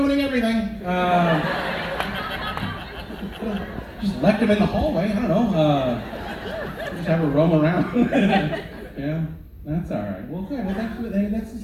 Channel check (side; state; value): both; identical; correlation 1.00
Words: everything. Just left them in the hallway. I don't know. Just have her roam around. Yeah, that's all right. Well, good. Well, this is